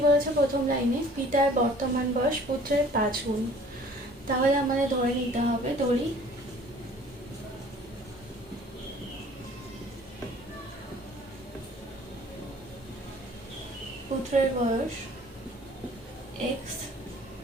বলেছে প্রথম লাইনে, পিতার বর্তমান বয়স পুত্রের 5 গুণ। তাহলে আমাদের ধরে নিতে হবে, ধরি পুত্রের বয়স x,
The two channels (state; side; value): normal; both; correlation 0.52